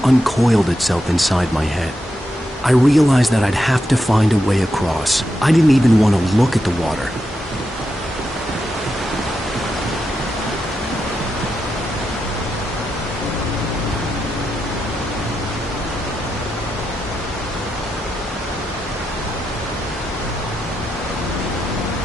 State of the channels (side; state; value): both; normal; correlation 0.86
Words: uncoiled itself inside my head. I realized that I'd have to find a way across. I didn't even want to look at the water.